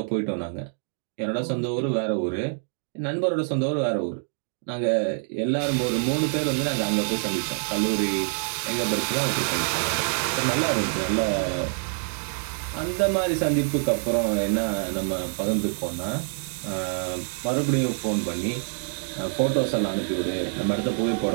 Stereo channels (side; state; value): left; silent; 61 dB below the other